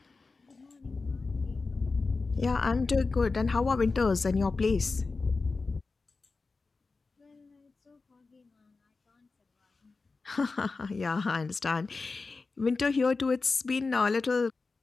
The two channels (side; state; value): right; quieter; 4.0 dB